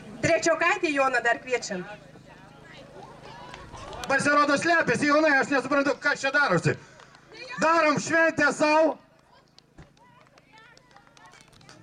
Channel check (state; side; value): identical; both; correlation 1.00